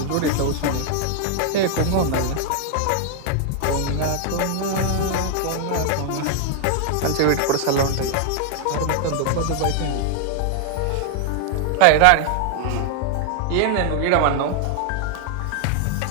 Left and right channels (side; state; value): both; different; correlation 0.00